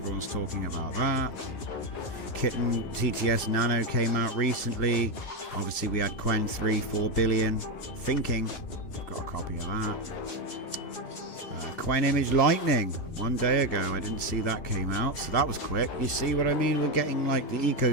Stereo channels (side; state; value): right; late; 2.5 ms